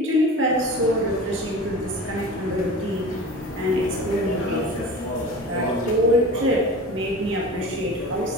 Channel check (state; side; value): normal; both; correlation 0.36